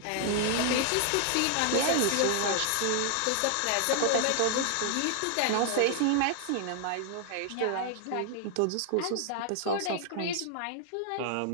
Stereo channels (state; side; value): different; both; correlation 0.00